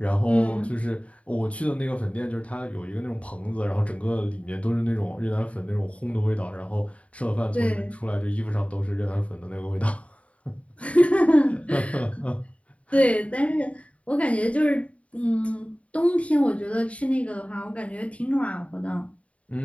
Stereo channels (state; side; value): late; right; 0.065 ms